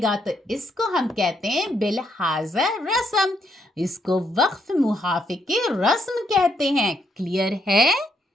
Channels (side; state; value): both; normal; correlation 0.75